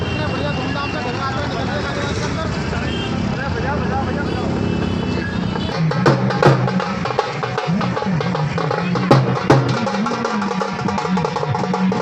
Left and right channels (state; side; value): identical; both; correlation 1.00